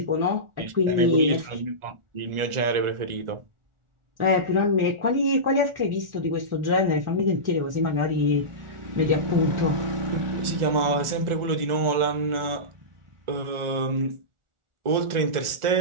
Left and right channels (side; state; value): left; late; 1.4 ms